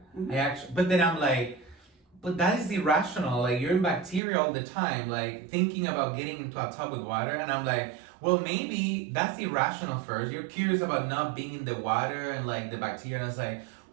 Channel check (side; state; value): left; drops out; at 4.2 s